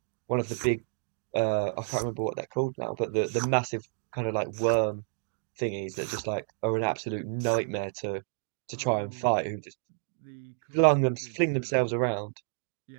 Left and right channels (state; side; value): silent; left; digital silence